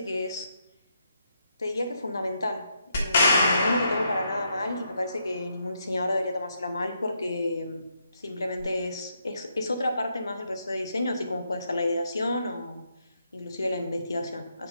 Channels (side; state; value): both; inverted; correlation -0.78